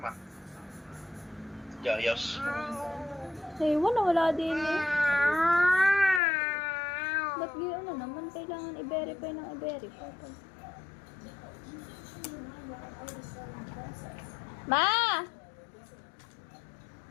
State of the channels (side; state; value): right; drops out; at 6.2 s